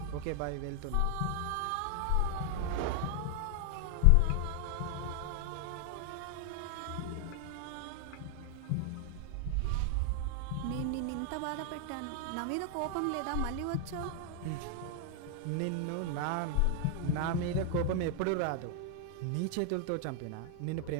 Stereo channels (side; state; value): both; different; correlation 0.00